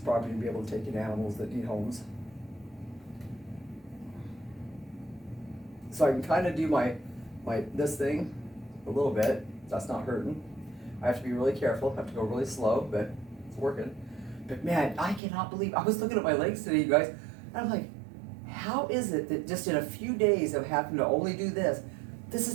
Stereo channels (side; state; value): left; drops out; at 15.2 s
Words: property and be able to take in animals that need homes. So I can kind of do this thing a little bit. That's not hurting. I have to be really careful. I have to go really slow, but it's working. But man, I cannot believe, I was looking at my legs today, you guys, and I'm like, how is it that just in a few days of having to only do this